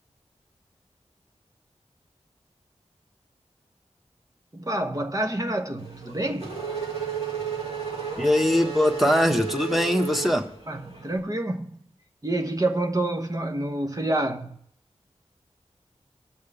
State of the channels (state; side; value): normal; both; correlation 0.81